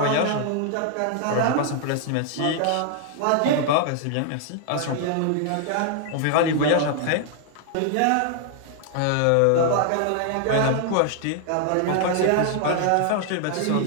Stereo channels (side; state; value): both; different; correlation 0.00